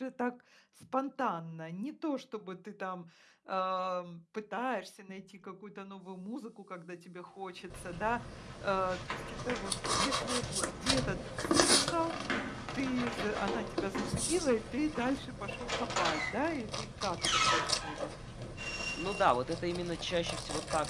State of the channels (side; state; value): both; identical; correlation 1.00